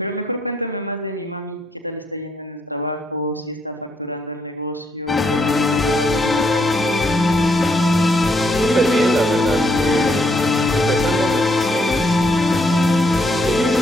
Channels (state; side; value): normal; both; correlation 0.73